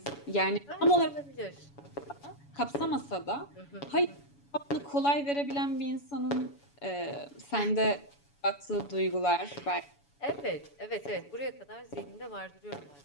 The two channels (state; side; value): late; right; 7.0 ms